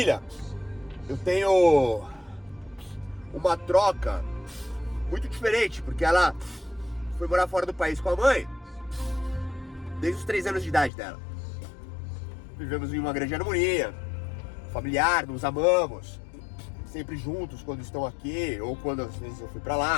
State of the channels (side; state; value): right; drops out; at 10.9 s